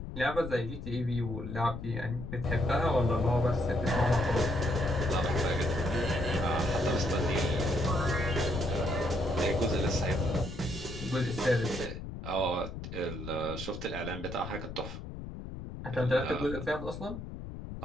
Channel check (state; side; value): noise; left; rumble, 9 dB below the sound